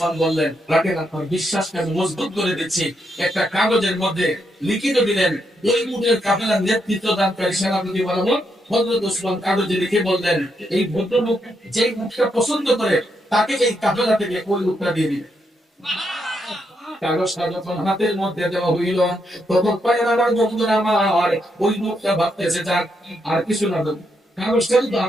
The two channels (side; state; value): both; normal; correlation 0.79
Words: বললেন, রাখেন আপনার বিশ্বাসকে আমি মজবুত করে দিচ্ছি। একটা কাগজের মধ্যে লিখিত দিলেন ওই উটের কাফেলার নেতৃত্ব দানকারী সেনাপতি বরাবর। হযরত উসমান কাগজে লিখে বললেন এই ভদ্রলোক যে উটটা পছন্দ করে তাকে এই কাফেলা থেকে ওই উটটা দিয়ে দিবেন। কাগজটা যখন হাতের মধ্যে দেওয়া হইল তখন পায়ের আমার বন্ধুরা আমার ওই লোকটা ভাবতেছে যাক আর কিছু না, কাগজটা তো